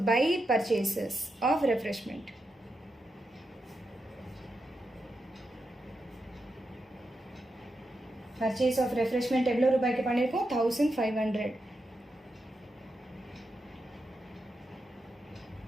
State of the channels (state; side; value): normal; both; correlation 0.86